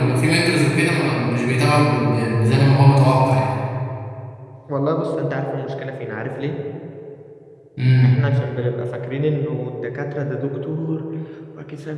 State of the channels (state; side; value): identical; both; correlation 1.00